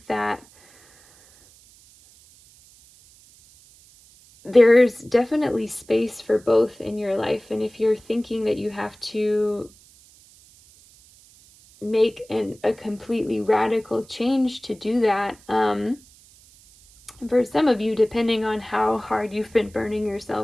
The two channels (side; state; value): right; noise; hiss, 27 dB below the sound